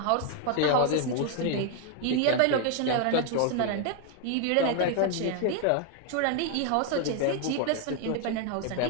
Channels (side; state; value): both; different; correlation 0.01